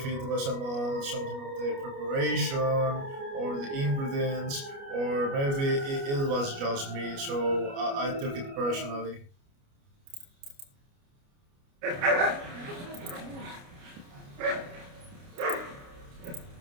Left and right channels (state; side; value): late; left; 29 ms